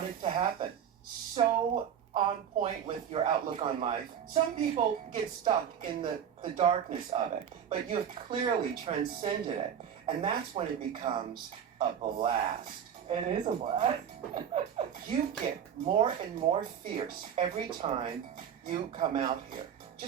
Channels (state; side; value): quieter; left; 8.6 dB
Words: to happen. So on point with your outlook on life. Some people get stuck in the darkness of it, but you have clearly transcended it. And that's when it becomes a blast. It is a blast. You get more and more fierce every time you come out here.